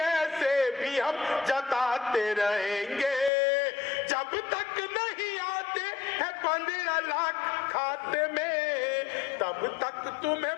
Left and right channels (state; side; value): drops out; right; at 3.3 s